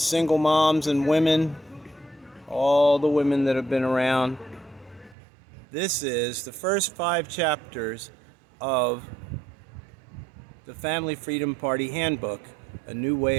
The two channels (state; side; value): drops out; left; at 5.2 s